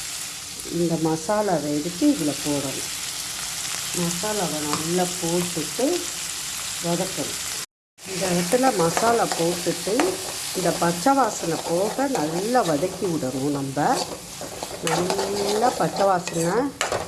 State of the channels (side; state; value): both; identical; correlation 1.00